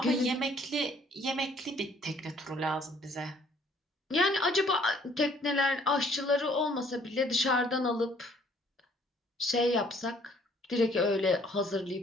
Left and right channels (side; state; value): both; normal; correlation 0.60